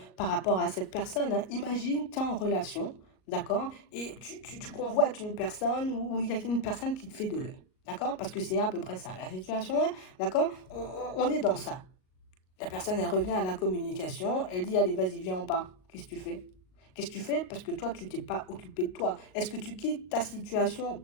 par rapport à cette personne, hein. Imagine, tu es en relation. D'accord? Et tu convoites une personne ou il y a une personne qui te fait de l'œil. D'accord? Parce que c'est à peu près ça la situation, hein. D'accord? On est dans ça. La personne, elle revient à la communication, elle dit, allez, vas-y, viens, on part. Qu'est-ce que tu fais? Qu'est-ce que tu fais? Parce que toi, tu t'es pas occupé de toi. Est-ce que tu quittes ta situation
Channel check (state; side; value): late; right; 38 ms